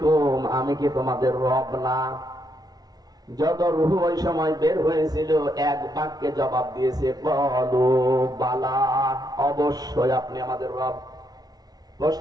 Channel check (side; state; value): left; late; 0.19 ms